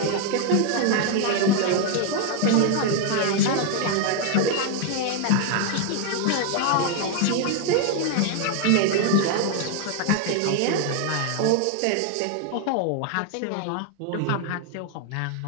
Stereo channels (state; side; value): different; both; correlation 0.00